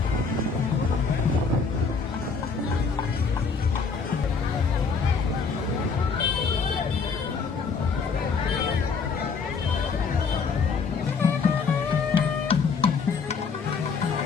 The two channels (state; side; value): quieter; right; 5.2 dB